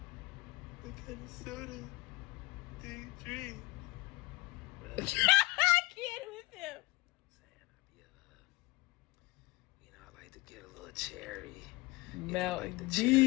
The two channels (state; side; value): quieter; right; 22.5 dB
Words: soda do you drink? Well, I can't with him. I like to get a little cherry. Mountain like